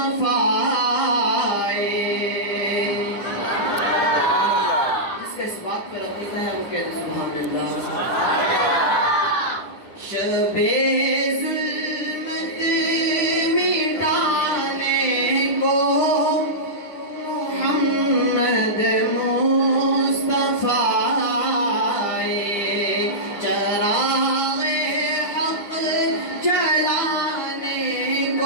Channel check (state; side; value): late; right; 9.9 ms